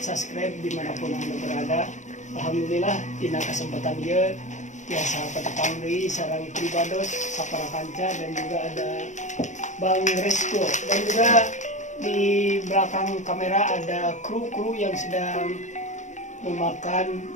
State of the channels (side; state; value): right; late; 0.35 ms